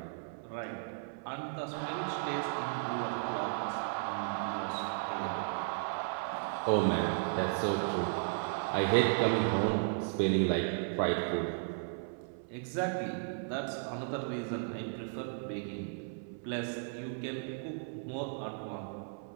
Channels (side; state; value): left; silent; 54 dB below the other